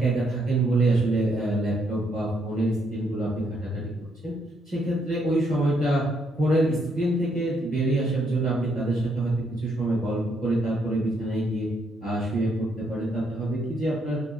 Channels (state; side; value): normal; both; correlation 0.74